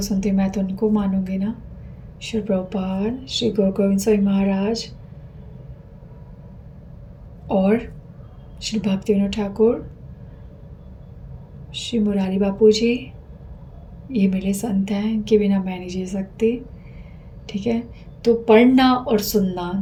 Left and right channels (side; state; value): both; identical; correlation 1.00